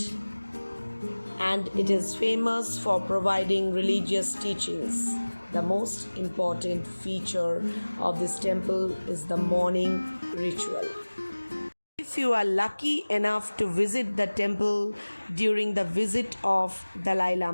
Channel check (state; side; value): inverted; both; correlation -1.00